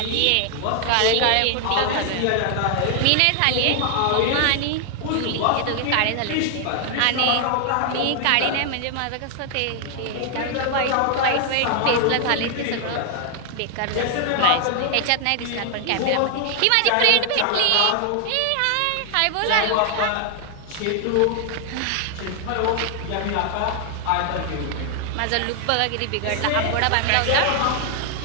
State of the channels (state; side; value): different; both; correlation 0.00